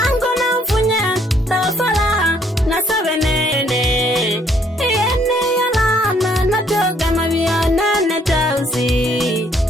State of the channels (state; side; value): normal; both; correlation 0.66